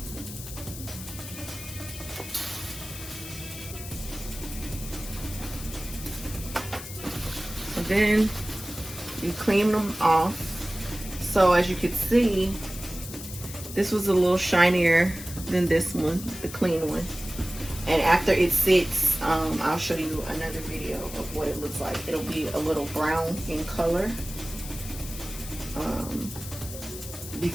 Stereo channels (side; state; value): left; noise; hiss, 12 dB below the sound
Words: So then you clean them off. So as you can see, this was a little shinier than this one, the clean one. And after it sits, I'll show you another video of what it looks like. It'll be a little brown in color